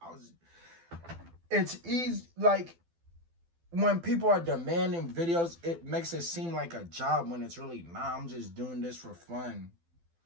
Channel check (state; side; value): late; left; 12 ms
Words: It's easy. Like when people are demanding videos, it makes it seem like a job when it's really not. I'm just doing this for fun.